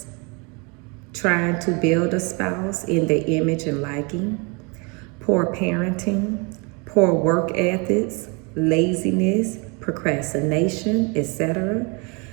trying to build a spouse in their image and liking, poor parenting, poor work ethics, laziness, procrastination, etc.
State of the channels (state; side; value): quieter; left; 31.0 dB